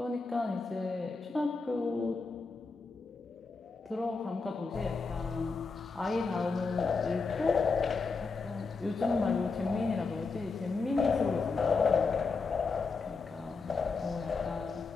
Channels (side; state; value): right; quieter; 4.4 dB